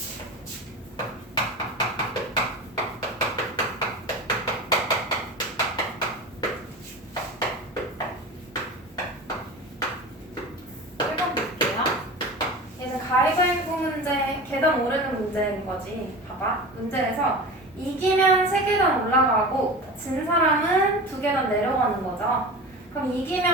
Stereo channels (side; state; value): both; normal; correlation 0.32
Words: 읽어볼게요. 얘는 가위바위보 문제, 계단 오르는 문제인 거지. 봐봐. 문제에서 이기면 3계단 올라가고 진 사람은 2계단 내려가는 거죠. 그럼